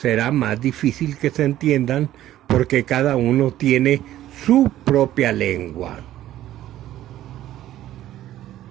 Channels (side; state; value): left; quieter; 13.4 dB